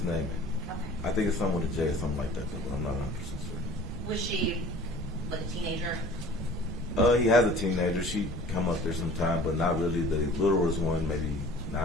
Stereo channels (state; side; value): normal; both; correlation 0.46